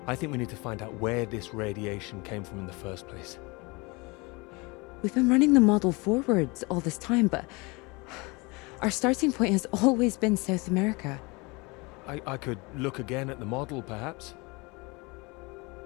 I think we need to find out where this radiation came from in the first place. We've been running the model forwards all this time, but our starting point has always been South America. I could look again at the model, perhaps.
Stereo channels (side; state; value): right; quieter; 26.5 dB